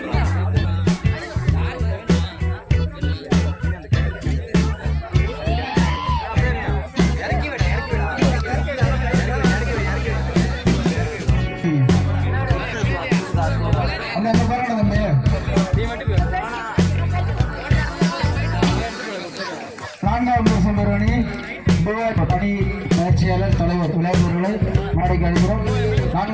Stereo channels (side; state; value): both; identical; correlation 1.00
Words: பணி பயிற்சியாளர் தலைவர் விளையாட்டுகளை நாளைக்கு அழைக்கிறோம்.